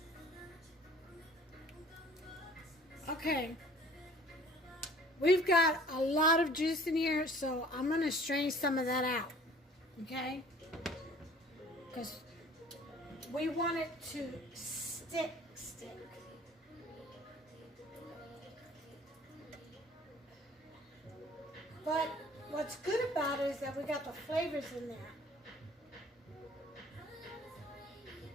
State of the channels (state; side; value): normal; both; correlation 0.51